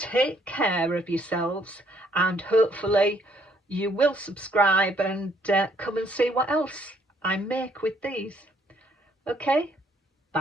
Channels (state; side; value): normal; both; correlation 0.66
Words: care of yourselves, and hopefully you will subscribe and come and see what else I make with these. Okay,